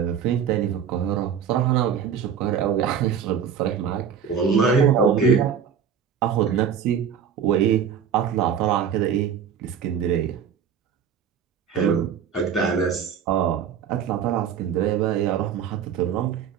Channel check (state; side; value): quieter; left; 7.8 dB